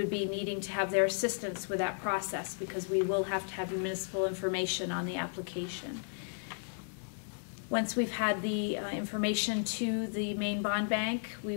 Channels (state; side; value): silent; right; digital silence